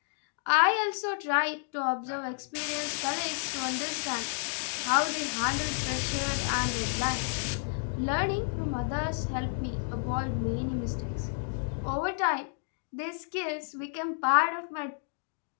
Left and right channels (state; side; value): silent; right; digital silence